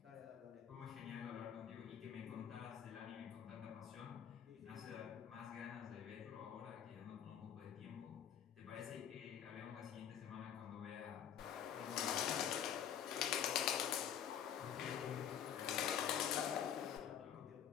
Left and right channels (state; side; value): quieter; right; 9.2 dB